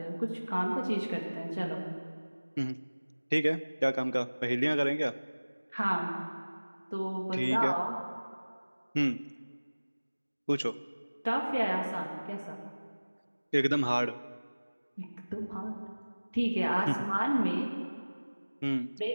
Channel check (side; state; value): both; inverted; correlation -1.00